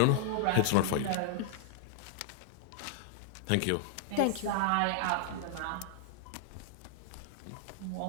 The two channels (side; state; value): both; different; correlation -0.01